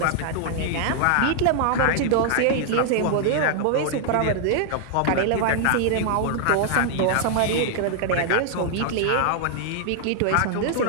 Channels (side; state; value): both; different; correlation 0.00